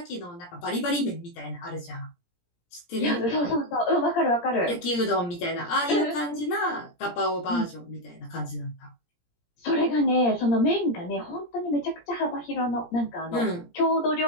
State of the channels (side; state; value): right; late; 17 ms